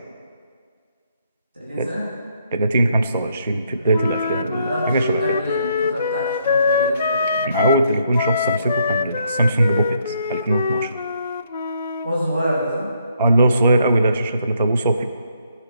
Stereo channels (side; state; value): both; inverted; correlation -0.72